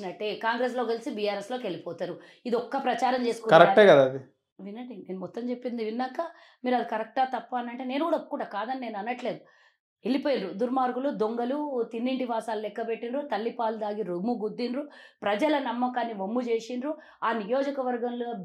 కాంగ్రెస్లో కలిసి బీఆర్ఎస్లోకి వెళ్ళిపోతారు. ఇది ఒక్క ప్రచారం కరెక్టే కదా అది. వినండి, నేను మొత్తం చెప్పింది విన్నాక మీరు అది కరెక్టా తప్ప అని అంటే నేను కూడా ఒప్పుకుంటా, కాదని నేను అనట్లేదు. వెళ్ళిపోయినరు దుర్మార్గులు, దొంగలు, తిన్నింటి వాసాలు లెక్క పెట్టినరు, తల్లిపాలు దాగి రొమ్ము గుద్దినరు, ప్రజల నమ్మకాన్ని వమ్ము చేసిండ్రు. ఆ నియోజకవర్గంలో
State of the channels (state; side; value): identical; both; correlation 1.00